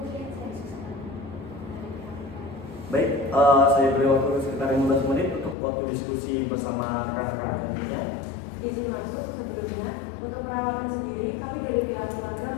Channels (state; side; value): drops out; right; at 5.6 s